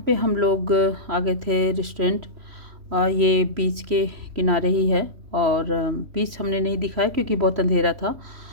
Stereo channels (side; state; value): left; late; 3.1 ms